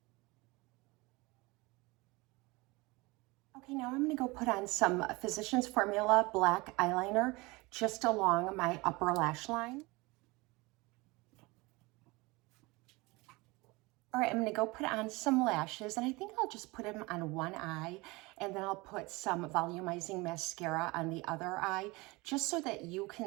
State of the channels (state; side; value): quieter; left; 23.8 dB